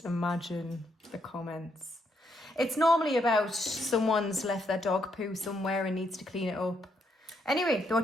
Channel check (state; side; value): normal; both; correlation 0.76